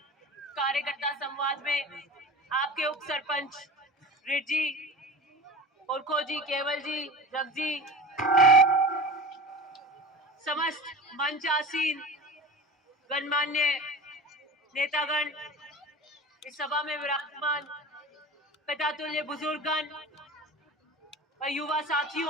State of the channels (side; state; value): both; normal; correlation 0.35